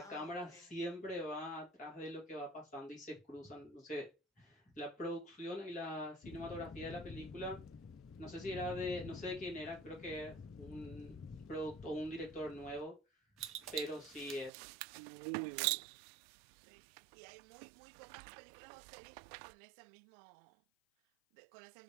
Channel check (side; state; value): left; drops out; at 14.5 s